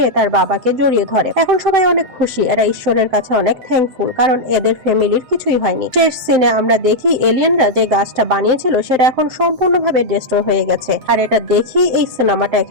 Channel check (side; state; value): left; late; 7.7 ms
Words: তার বাবাকে জড়িয়ে ধরে। এখন সবাই অনেক খুশি, এরা ঈশ্বরের কাছে অনেক থ্যাঙ্কফুল, কারণ এদের ফ্যামিলির কিছুই হয়নি। শেষ সিনে আমরা দেখি এলিয়েনরা যে গাছটা বানিয়েছিল সেটা এখন সম্পূর্ণভাবে ডিস্ট্রয় হয়ে গেছে, আর এটা দেখি এই সিনেমাটা